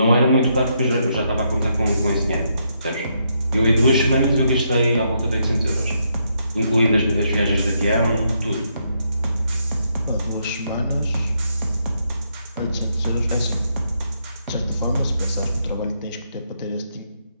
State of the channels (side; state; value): both; inverted; correlation -0.77